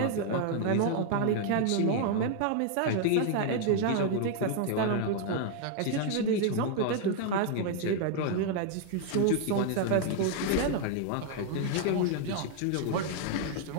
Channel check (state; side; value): different; both; correlation 0.00